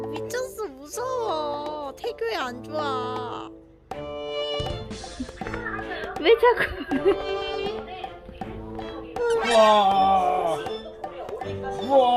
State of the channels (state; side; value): identical; both; correlation 1.00